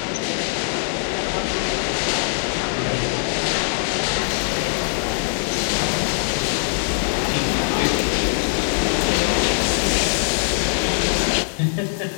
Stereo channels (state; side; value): silent; right; digital silence